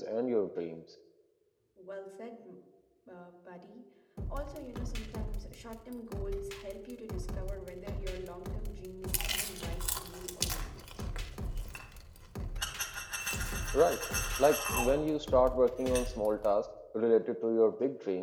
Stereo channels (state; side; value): identical; both; correlation 1.00